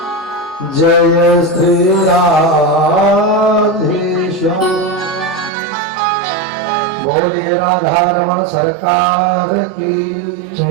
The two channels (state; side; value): drops out; left; at 5.5 s